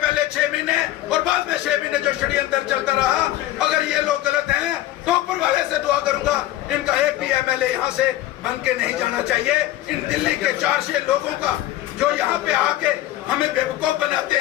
6 महीने और बाद में 6 महीने जो षड्यंत्र चलता रहा, अगर ये लोग गलत हैं तो ऊपर वाले से दुआ करूंगा इनका एक भी MLA यहाँ से बन के नहीं जाना चाहिए। इन दिल्ली के 400 लोगों का जो यहाँ पे आके हमें बेवकूफ बनाते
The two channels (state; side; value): quieter; right; 14.8 dB